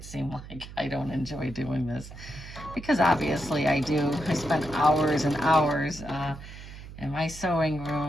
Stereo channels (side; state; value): right; noise; hum, 14 dB below the sound